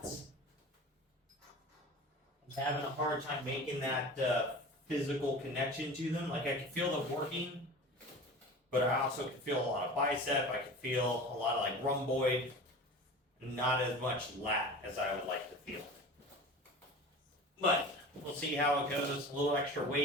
I'm having a hard time making that physical connection to them. Like I can feel them working, but I also can feel a lot of bicep. I can feel a lot of like rhomboid, not as much lat as I would like to feel. But we'll see how it goes. A little extra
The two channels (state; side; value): normal; both; correlation 0.36